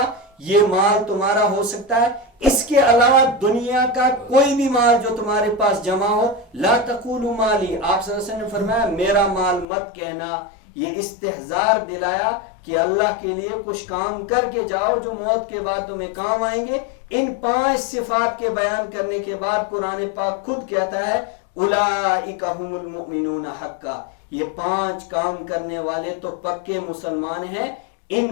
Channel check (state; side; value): drops out; right; at 9.7 s